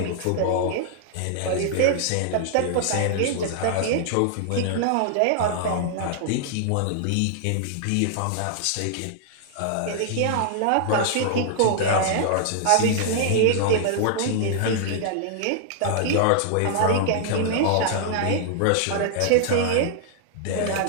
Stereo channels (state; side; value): different; both; correlation -0.01